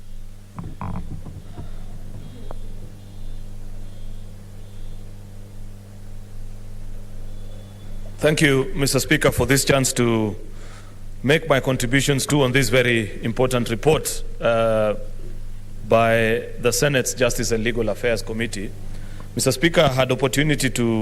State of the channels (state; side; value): identical; both; correlation 1.00